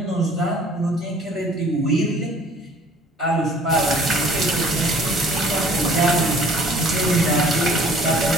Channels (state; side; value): normal; both; correlation 0.53